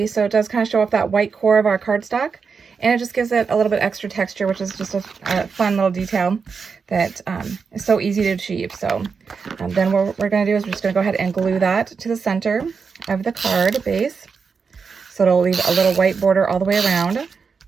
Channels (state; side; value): quieter; left; 5.5 dB